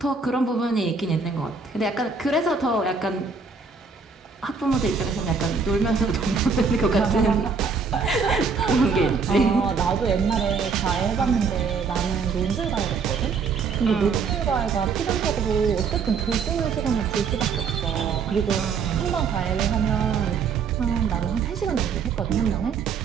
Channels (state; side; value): quieter; left; 5.3 dB